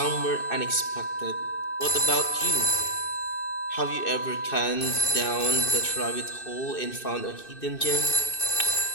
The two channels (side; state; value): right; late; 2.6 ms